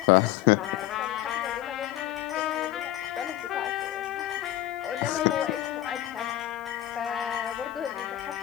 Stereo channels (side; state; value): right; quieter; 13.7 dB